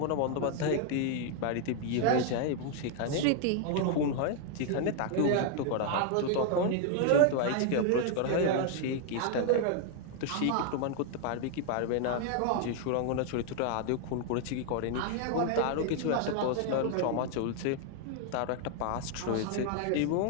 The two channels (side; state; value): both; different; correlation 0.00